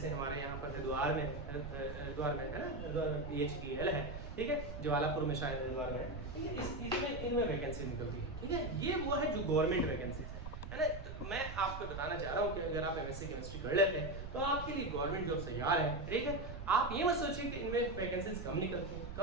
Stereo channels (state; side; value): noise; right; rumble, 8 dB below the sound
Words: हमारे यहाँ पर हरिद्वार में है ना, BHEL है, ठीक है, ज्वालापुर में शायद हरिद्वार में है, ठीक है। इसमें इनमें वैकेंसी निकलती है, ठीक है। ये वो है जो गवर्नमेंट वैकेंसीज है ना। तो मैं आपको बताना चाह रहा हूँ कि अगर आप एमएससी केमिस्ट्री कर लेते हैं तो आपके लिए गवर्नमेंट जॉब तैयार है, ठीक है। आप ये मत सोचिए कि इनमें वैकेंसीज कम